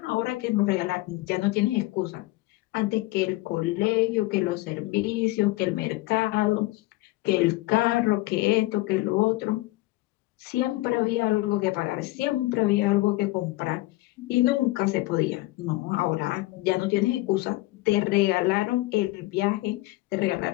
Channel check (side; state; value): right; quieter; 19.6 dB